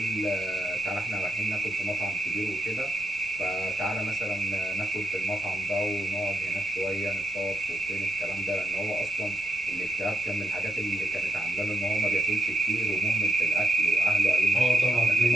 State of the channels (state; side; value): noise; left; rumble, 25 dB below the sound